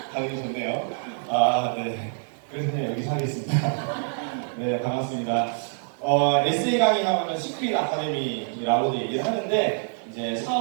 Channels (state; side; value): silent; left; digital silence